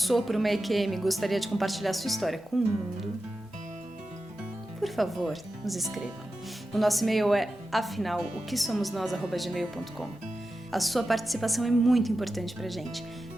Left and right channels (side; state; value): both; normal; correlation 0.92